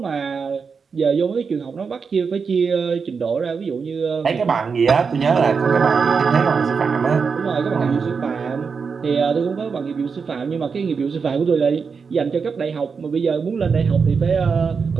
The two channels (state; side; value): quieter; left; 5.5 dB